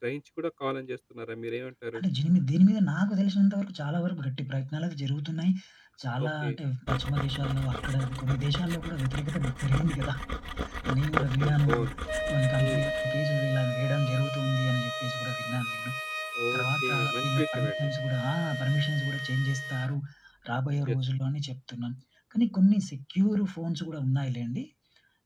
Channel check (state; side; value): identical; both; correlation 1.00